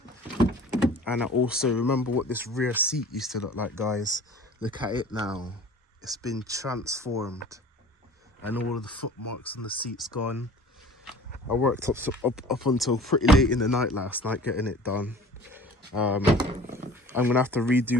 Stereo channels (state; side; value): normal; both; correlation 0.45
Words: And I also remember what this rear seat used to look like, guys. Look at it now. It's been transformed. And all of the footmarks on the seat's gone. I worked up until pretty late in the night last night getting it done. I'm gonna have to